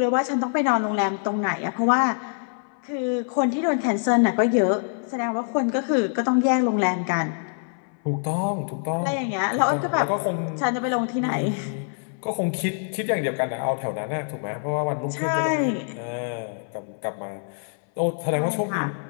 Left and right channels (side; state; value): right; silent; 61 dB below the other